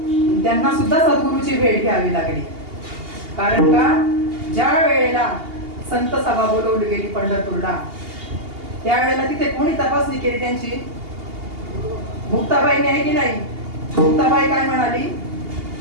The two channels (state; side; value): late; left; 2.8 ms